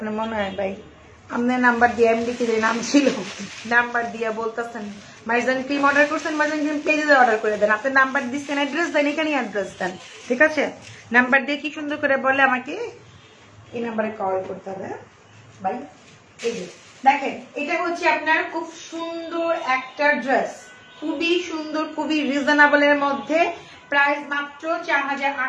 মনে হয় ভাই? আপনার নাম্বার দিয়ে এমডি কি নাম ছিল, নাম্বার দিয়ে বলতেছেন মাইজান ক্রিম অর্ডার করছেন, মাইজান ক্রিম পেজে অর্ডার করে দেন। আপনি নাম্বার দিচ্ছেন, অ্যাড্রেস দেন, এখানেই অ্যাড্রেস দেন, ঠিক আছে। নাম্বার দিয়ে কি সুন্দর করে বলে আমাকে এই নাম্বারে কল করতে হবে ভাই। এই যে দেখেন, এটা হচ্ছে আপনার খুব সুন্দর একটা ড্রেস, খুবই সুন্দর, খুবই রিজনেবল এর মধ্যে। প্রাইস মাত্র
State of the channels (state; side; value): identical; both; correlation 1.00